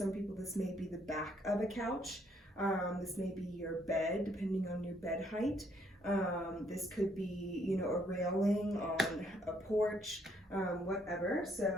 people this may be the back of a couch, this may be your bed depending on your bed height. This could be, you know, a railing on a porch, whatever.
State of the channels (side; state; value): both; normal; correlation 0.69